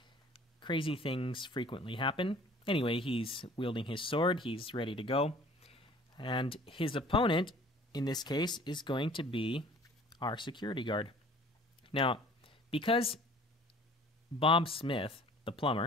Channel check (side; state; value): both; normal; correlation 0.50